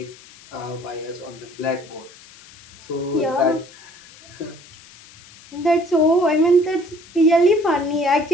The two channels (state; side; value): noise; left; hiss, 22 dB below the sound